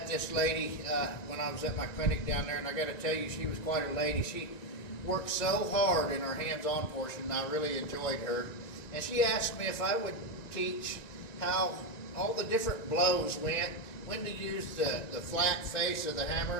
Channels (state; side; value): late; right; 1.9 ms